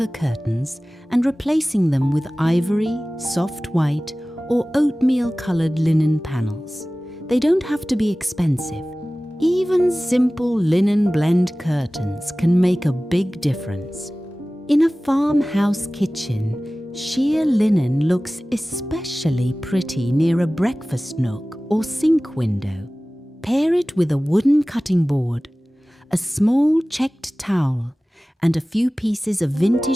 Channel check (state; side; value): normal; both; correlation 0.97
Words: curtains and replacing them with ivory, soft white, or oatmeal-coloured linen panels. They don't have to be expensive. Even simple linen blend curtains can make a big difference. In a farmhouse kitchen, sheer linen looks especially pretty near a breakfast nook or sink window. Pair it with a wooden cutting board, a small checked towel, and a few pieces of